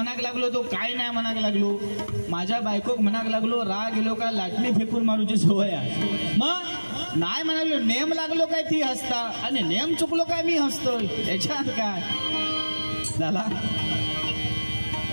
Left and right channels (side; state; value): both; inverted; correlation -1.00